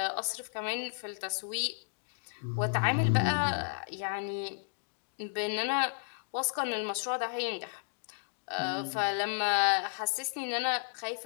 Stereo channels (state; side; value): silent; right; digital silence